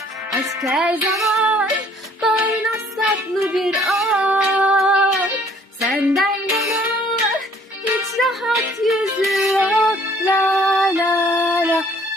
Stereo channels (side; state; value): both; normal; correlation 0.58